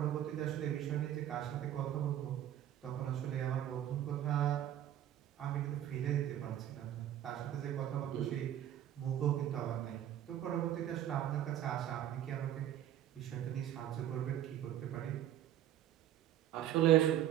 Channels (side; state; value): left; quieter; 11.6 dB